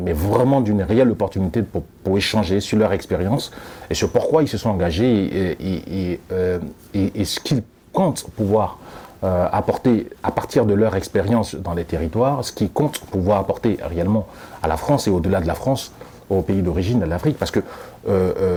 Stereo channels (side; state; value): both; identical; correlation 1.00